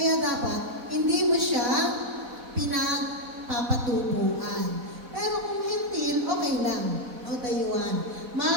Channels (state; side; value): late; left; 4.1 ms